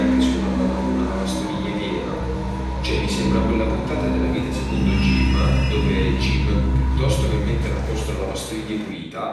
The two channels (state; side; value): identical; both; correlation 1.00